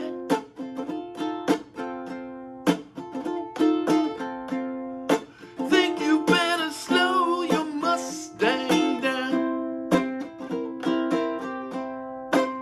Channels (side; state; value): both; identical; correlation 1.00